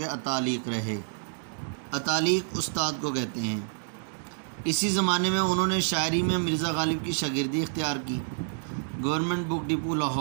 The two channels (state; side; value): silent; left; digital silence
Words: اتالیق رہے۔ اتالیق استاد کو کہتے ہیں۔ اسی زمانے میں انہوں نے شاعری میں مرزا غالب کی شاگردی اختیار کی۔ گورنمنٹ بک ڈپو